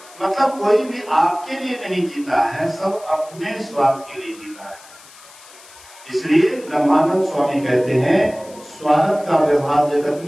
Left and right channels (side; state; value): left; noise; hiss, 22 dB below the sound